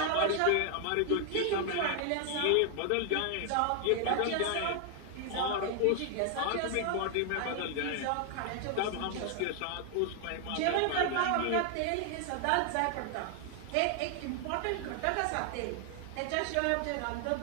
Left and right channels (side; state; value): both; different; correlation 0.00